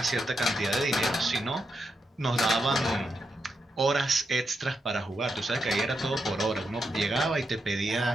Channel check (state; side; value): normal; both; correlation 0.84